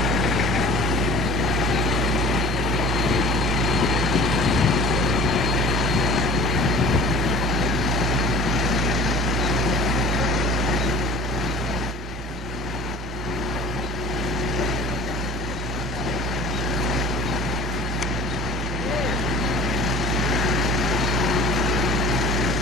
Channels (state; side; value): normal; both; correlation 0.45